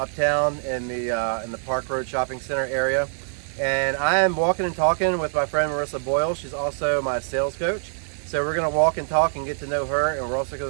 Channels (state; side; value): silent; left; digital silence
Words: in the Park Road Shopping Center area. And I am walking and talking with my friend Marissa Boyle. She's also my sales coach. So we're gonna walk and talk and get to know her, and we're also